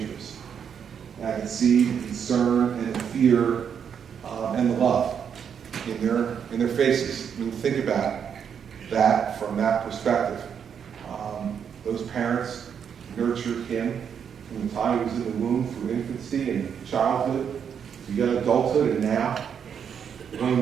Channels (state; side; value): quieter; left; 7.6 dB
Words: And I could see the concern and the fear and the love in their faces. I mean, think about that from that perspective. Those parents nurtured him from the time he was in the womb through infancy and childhood to young adulthood, and now one of